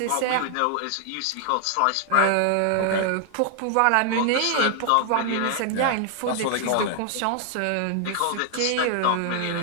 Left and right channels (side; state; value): both; different; correlation 0.00